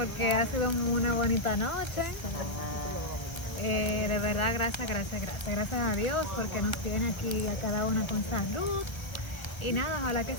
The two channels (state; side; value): late; right; 1.0 ms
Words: ha sido una bonita noche. De verdad, gracias a Dios porque nos tiene aquí a cada una con salud. Y nada, ojalá que